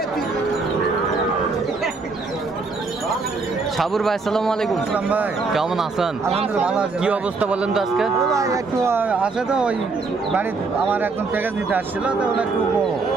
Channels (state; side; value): quieter; left; 4.1 dB